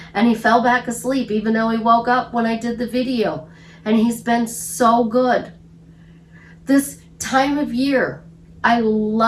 and he fell back asleep even though he woke up when I did the video, and he's been so good. This time of year, I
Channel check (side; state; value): both; identical; correlation 1.00